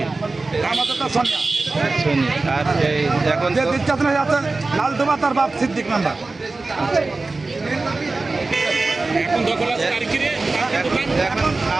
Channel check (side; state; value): left; quieter; 3.5 dB